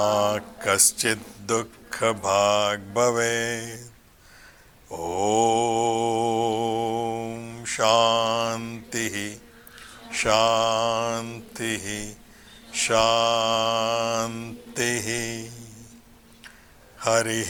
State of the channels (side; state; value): both; identical; correlation 1.00